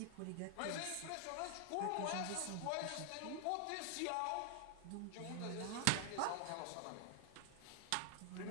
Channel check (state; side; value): different; both; correlation 0.00